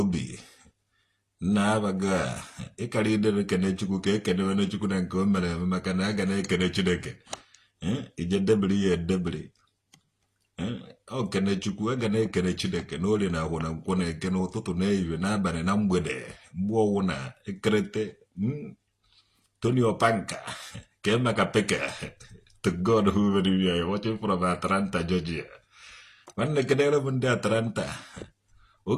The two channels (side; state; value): both; identical; correlation 1.00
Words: na-abaga ịkara idere kene Chukwu ka ekenewene Chukwu na nke o mere eme maka na a ga na-ekene Chineke ije debiri ya edebiri ọ kene Chukwu a ga na-ekene Chineke n'orie na agwụ na nkwọ na eke n'ụtụtụ na ehihie n'abalị na mgbede mgbe ọwụ na ekerete Tony Opanka ka emeka peke to God who made me watching from Atlanta, Georgia. Nwanne kedere m ndị Atlanta